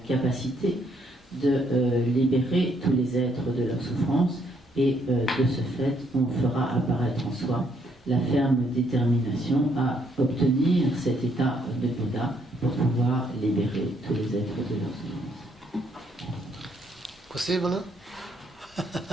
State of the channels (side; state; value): both; normal; correlation 0.71